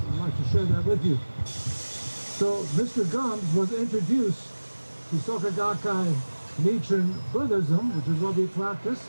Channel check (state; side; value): inverted; both; correlation -1.00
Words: I'd like to share that with you. So Mr. Gumbs was introduced to Soka Gakkai Nichiren Buddhism, which is what we practice,